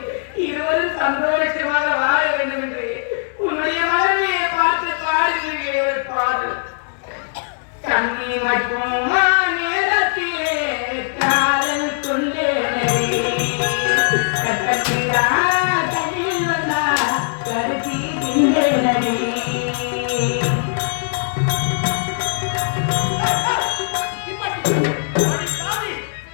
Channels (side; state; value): right; silent; 66 dB below the other